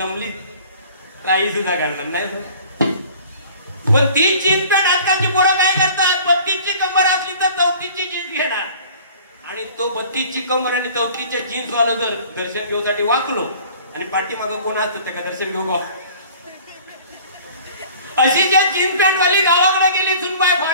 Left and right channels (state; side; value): inverted; both; correlation -0.48